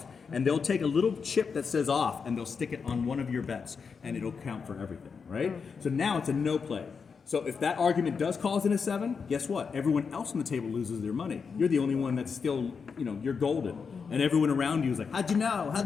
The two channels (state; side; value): quieter; right; 5.7 dB